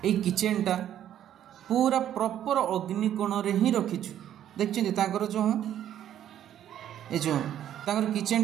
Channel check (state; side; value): quieter; left; 10.9 dB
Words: ए किचेनटा पूरा प्रॉपर अग्निकोण रे ही रखिचु देखछिन तांकर जो ए जो तांकर